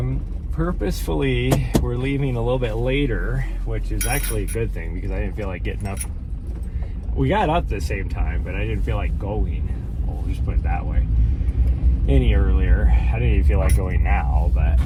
we're leaving a little bit later, which is actually a good thing because I didn't feel like getting up. We got up at the same time, but I didn't feel like going. We'll just put it that way. Any earlier. I didn't even feel like going now, but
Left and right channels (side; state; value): both; identical; correlation 1.00